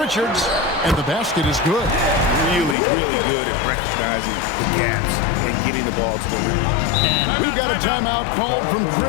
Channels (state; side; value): drops out; right; at 2.8 s